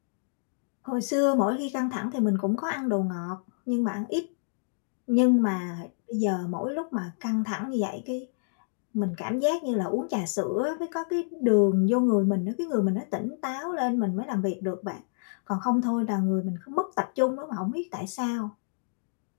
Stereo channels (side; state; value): right; silent; digital silence